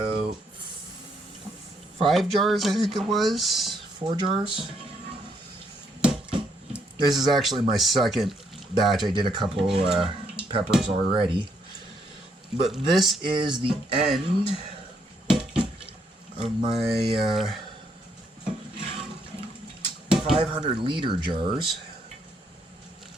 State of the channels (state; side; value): normal; both; correlation 0.73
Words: 5 jars, I think it was. 4 jars. This is actually my second batch. I did a couple peppers already. But this is the end of my 500 liter jars.